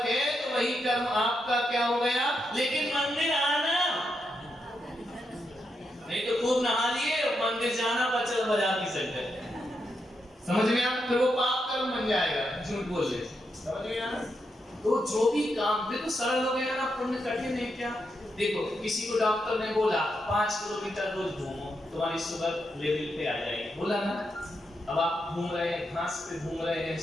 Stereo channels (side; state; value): both; normal; correlation 0.83